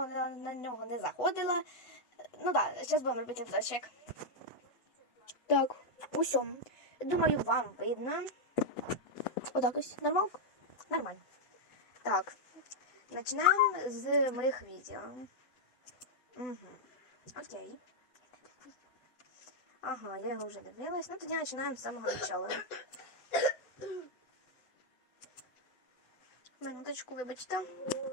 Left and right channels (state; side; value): late; right; 8.0 ms